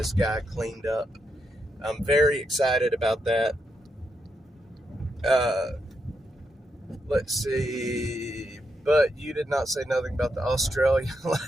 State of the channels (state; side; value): normal; both; correlation 0.82